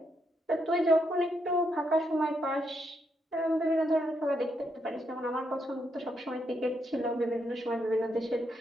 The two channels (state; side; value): normal; both; correlation 0.79